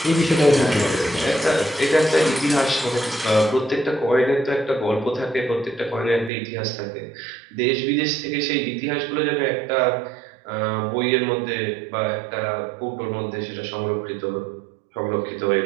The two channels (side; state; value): left; drops out; at 6.3 s